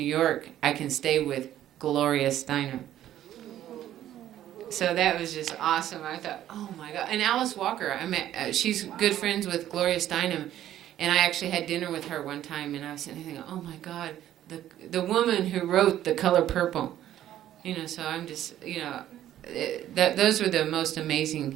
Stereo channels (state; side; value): quieter; left; 12.2 dB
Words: York, I can stay with Gloria Steinem. So that was just awesome. I thought, oh my God. And Alice Walker, I met. She's good friends with Gloria Steinem, and I actually had dinner with her one time. And I was sitting there thinking, oh my God, the woman who wrote The Color Purple. You know, so I'm just, you know, those were the most